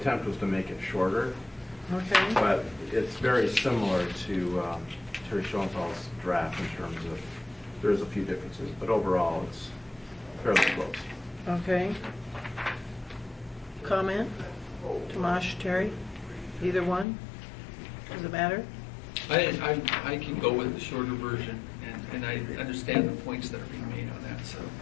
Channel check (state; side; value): drops out; right; at 17.1 s